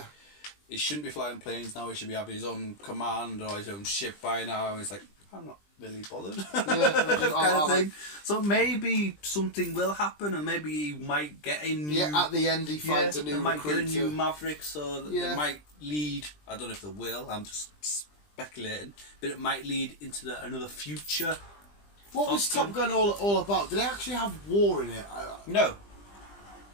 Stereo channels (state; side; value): late; right; 20 ms